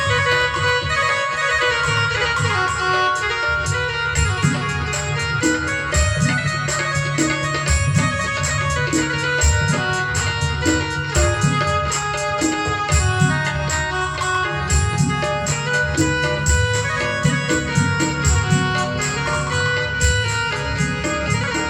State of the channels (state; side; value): identical; both; correlation 1.00